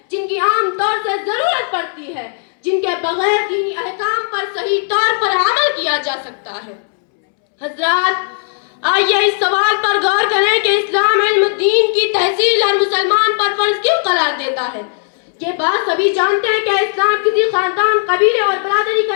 جن کی عام طور سے ضرورت پڑتی ہے، جن کے بغیر دینی احکام پر صحیح طور پر عمل کیا جا سکتا ہے۔ حضرات، آئیے اس سوال پر غور کریں کہ اسلام علم دین کی تحصیل ہر مسلمان پر فرض کیوں قرار دیتا ہے۔ یہ بات سبھی جانتے ہیں کہ اسلام کسی خاندان، قبیلے اور برادری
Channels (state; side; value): silent; right; 69 dB below the other